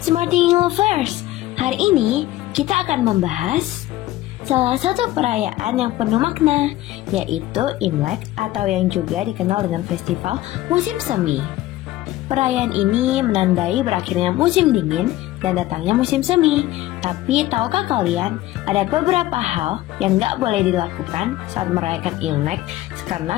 Thinking Lovers. Hari ini kita akan membahas salah satu perayaan yang penuh makna, yaitu Imlek atau yang juga dikenal dengan festival musim semi. Perayaan ini menandai berakhirnya musim dingin dan datangnya musim semi. Tapi tahukah kalian, ada beberapa hal yang gak boleh dilakukan saat merayakan Imlek karena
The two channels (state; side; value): quieter; right; 15.9 dB